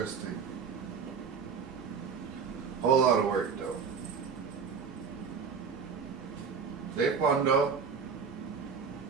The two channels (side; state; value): left; quieter; 6.0 dB